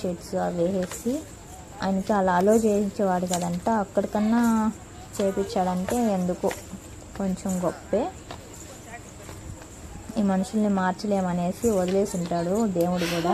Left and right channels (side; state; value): both; identical; correlation 1.00